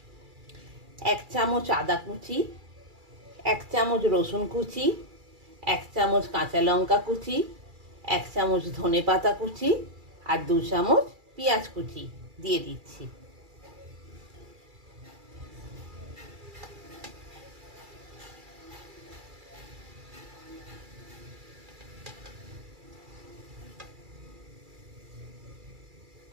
1 চামচ আদা কুচি, 1 চামচ রসুন কুচি, 1 চামচ কাঁচা লঙ্কা কুচি, 1 চামচ ধনে পাতা কুচি, আর 2 চামচ পেঁয়াজ কুচি দিয়ে দিচ্ছি।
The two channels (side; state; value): left; late; 2.3 ms